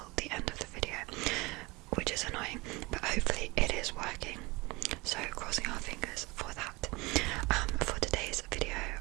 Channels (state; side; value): quieter; left; 24.1 dB